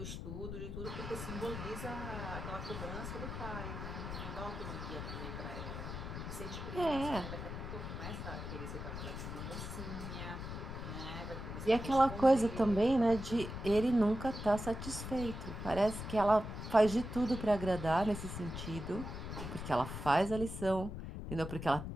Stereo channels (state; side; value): noise; left; rumble, 7 dB below the sound